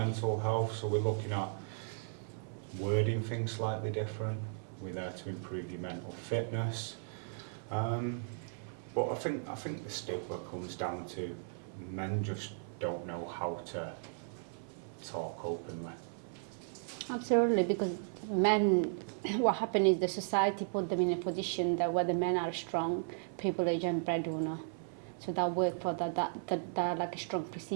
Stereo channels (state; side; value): silent; left; 54 dB below the other